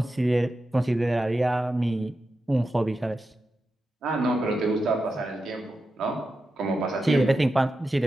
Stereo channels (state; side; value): normal; both; correlation 0.90